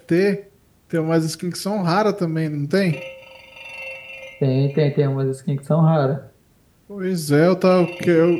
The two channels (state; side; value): identical; both; correlation 1.00